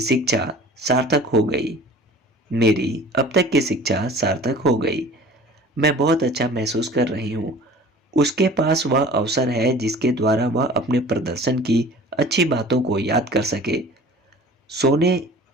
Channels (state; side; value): normal; both; correlation 0.45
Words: शिक्षा सार्थक हो गई। मेरी अब तक की शिक्षा सार्थक हो गई। मैं बहुत अच्छा महसूस कर रही हूँ। उसके पास वह अवसर है जिसके द्वारा वह अपने प्रदर्शन की अच्छी बातों को याद कर सके। सोने